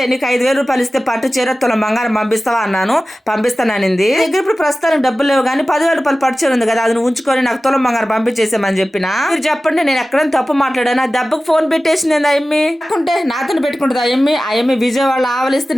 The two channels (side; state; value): both; normal; correlation 0.96